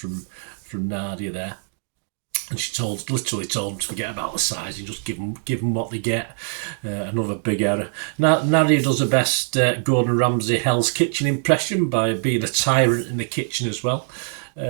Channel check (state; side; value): silent; left; 64 dB below the other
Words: Nadia there. And she literally told them to forget about the size and just give them what they get. Another big error. Nadia does her best Gordon Ramsay Hell's Kitchen impression by being a tyrant in the kitchen as well.